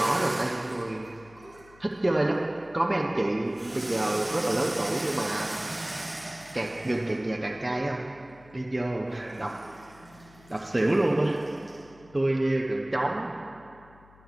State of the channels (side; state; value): left; noise; hum, 25 dB below the sound